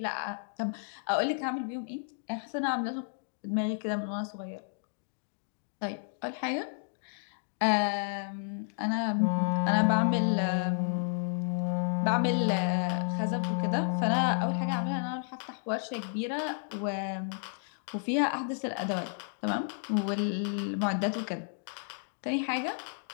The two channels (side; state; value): right; silent; digital silence